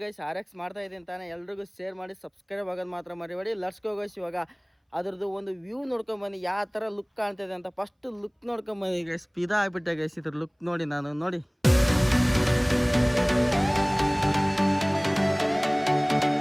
ಗೈಸ್ RX ಮಾಡ್ತಾ ಇದ್ದೀನಿ ತಾನೇ. ಎಲ್ರಿಗೂ ಶೇರ್ ಮಾಡಿ, ಸಬ್ಸ್ಕ್ರೈಬ್ ಆಗೋದು ಮಾತ್ರ ಮರಿಬೇಡಿ. Let's go guys. ಇವಾಗ ಅದ್ರದ್ದು ಒಂದು ವ್ಯೂ ನೋಡ್ಕೊಂಬನ್ನಿ, ಯಾವ ಥರ ಲುಕ್ ಕಾಣ್ತಿದೆ ಅಂತ. ಫಸ್ಟ್ ಲುಕ್ ನೋಡ್ಕೊಂಬನ್ನಿ ಗೈಸ್. ಪಿದಾ ಆಗಿಬಿಟ್ಟೆ ಗೈಸ್ ಇದ್ರ ಲುಕ್ ನೋಡಿ. ನೋಡಿ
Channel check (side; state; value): both; identical; correlation 1.00